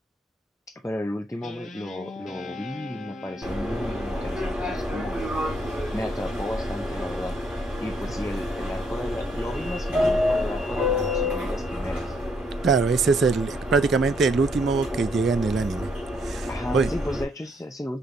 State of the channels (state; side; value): normal; both; correlation 0.72